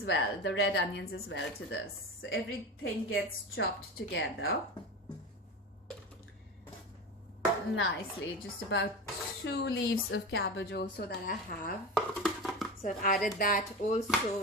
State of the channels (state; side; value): normal; both; correlation 0.25